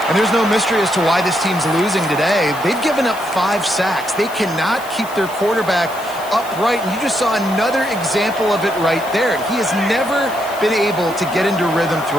And there's no mystery as to why this team's losing today. They've given up 5 sacks. They cannot keep their quarterback upright, and you just saw another example of it right there. He has never been able to get into rhythm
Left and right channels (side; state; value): left; noise; hiss, 17 dB below the sound